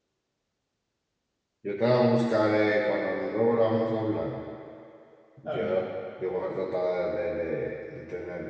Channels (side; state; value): both; identical; correlation 1.00